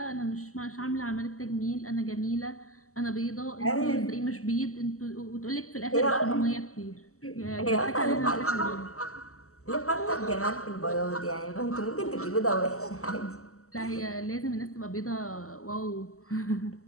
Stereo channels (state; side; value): late; right; 0.64 ms